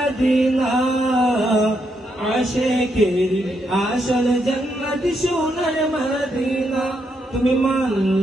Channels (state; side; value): normal; both; correlation 0.79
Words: আশিকের আসল জান্নাত সোনার মদিনা তুমি